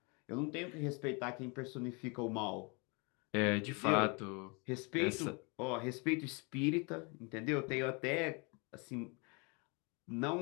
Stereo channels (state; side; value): quieter; right; 31.5 dB